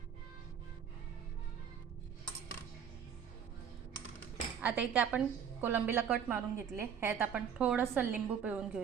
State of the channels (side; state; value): left; quieter; 7.8 dB